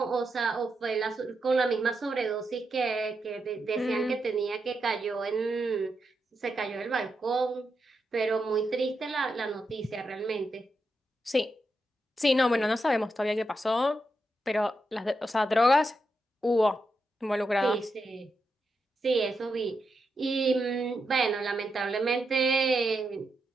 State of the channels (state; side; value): normal; both; correlation 0.85